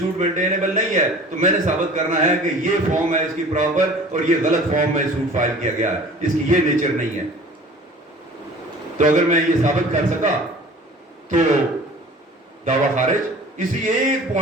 مینٹینیبل نہیں ہے، تو میں نے ثابت کرنا ہے کہ یہ فارم ہے اس کی پراپر اور یہ غلط فارم میں سوٹ فائل کیا گیا ہے، اس کی یہ نیچر نہیں ہے. تو اگر میں یہ ثابت کر سکا تو دعویٰ خارج. اسی ایک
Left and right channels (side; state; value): both; normal; correlation 0.45